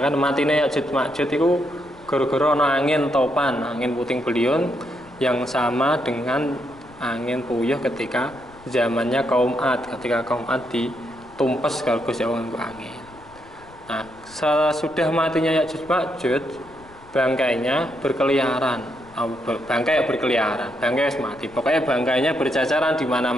matine Ya'juj Ma'juj itu gara-gara ana angin topan, angin puting beliung yang sama dengan angin puyuh ketika zamannya kaum Ad, ketika kaum Ad ditumpes karo Gusti Allah nganggo angin. Nah, sesudah matinya Ya'juj Ma'juj, bangkainya berkeliaran. Bangkai berkeliaran, bangkai wis mati. Pokoknya bangkainya berceceran di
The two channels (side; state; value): left; noise; rumble, 24 dB below the sound